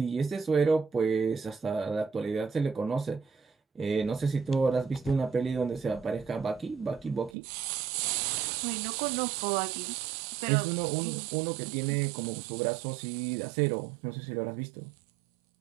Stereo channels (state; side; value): drops out; left; at 7.4 s